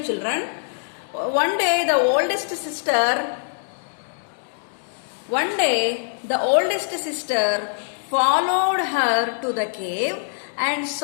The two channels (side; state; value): right; silent; digital silence